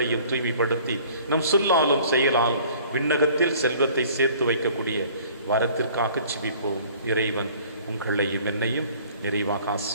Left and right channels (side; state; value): both; inverted; correlation -0.52